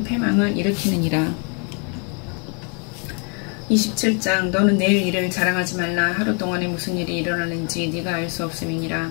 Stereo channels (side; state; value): right; quieter; 37.2 dB